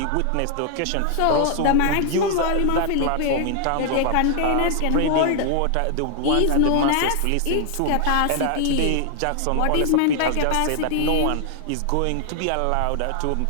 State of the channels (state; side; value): different; both; correlation 0.00